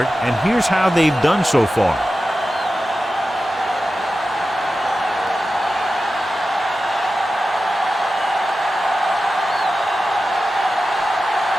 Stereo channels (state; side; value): normal; both; correlation 0.93